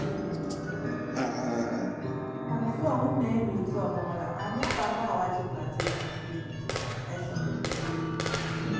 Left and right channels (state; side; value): identical; both; correlation 1.00